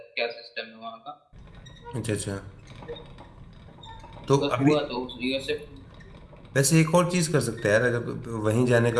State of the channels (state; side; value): identical; both; correlation 1.00